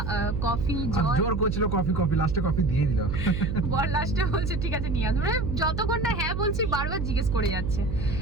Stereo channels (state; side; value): noise; right; hum, 3 dB below the sound